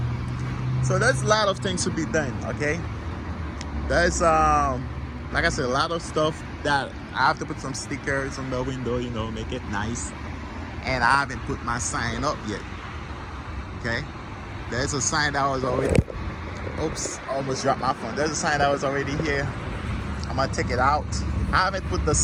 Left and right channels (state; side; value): identical; both; correlation 1.00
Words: So there's a lot of things to be done. Okay, there's like I said, a lot of stuff that I have to put some stickers on the window, make it nice. And I haven't put my sign up yet. Okay, there's a sign that was already, oops, almost dropped my phone. There's a sign that was already here. I'm gonna take it out. I haven't put the